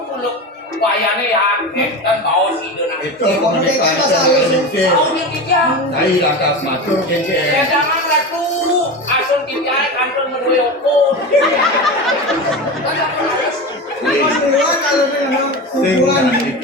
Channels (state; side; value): normal; both; correlation 0.25